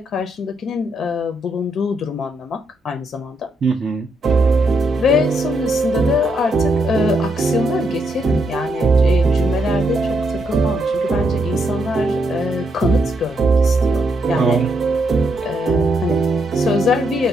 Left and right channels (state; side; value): normal; both; correlation 0.78